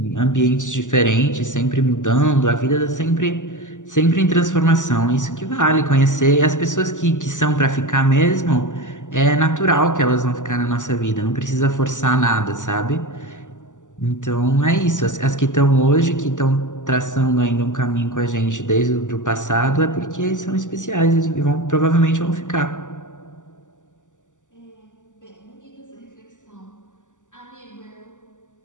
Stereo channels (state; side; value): late; right; 0.86 ms